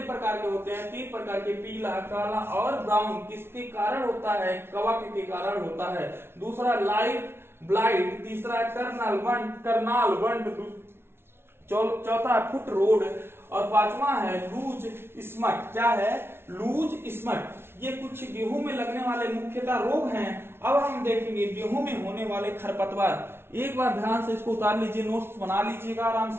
प्रकार के होते हैं, 3 प्रकार के, पीला, काला और ब्राउन। किसके कारण होता है, कवक के कारण होता है। दूसरा लाइट ब्लाइट, तीसरा करनाल वंड, चौथा फुट रोड और पांचवा है लूज स्मट। क्या है, लूज स्मट। ये कुछ गेहूं में लगने वाले मुख्यतः रोग हैं। अब हम देखेंगे गेहूं में होने वाले खरपतवार। एक बार ध्यान से इसको उतार लीजिए, नोट्स बना लीजिएगा आराम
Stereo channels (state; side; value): late; left; 0.12 ms